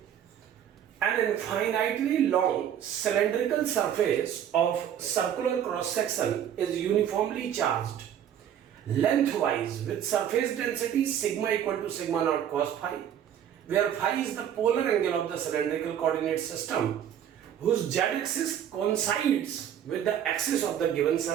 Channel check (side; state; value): left; quieter; 9.7 dB